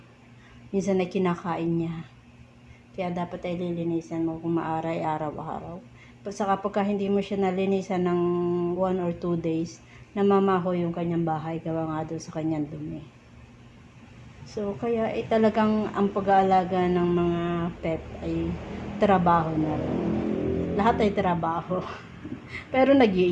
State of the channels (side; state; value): both; identical; correlation 1.00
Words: minsan na kinakain niya. Kaya dapat ay lilinisan mo kung maaray araw-araw. Saka pagka hindi mo siya nalinisan ng 1 or 2 days, namamaho yung kanyang bahay gawa nga doon sa kanyang dumi. So, kaya talagang ang pag-aalaga ng mga pet ay trabaho na rin. Lahat ay trabaho. Pero